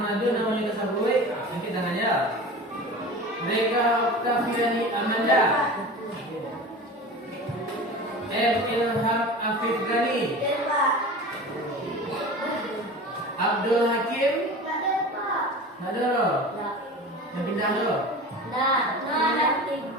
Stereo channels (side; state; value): both; normal; correlation 0.34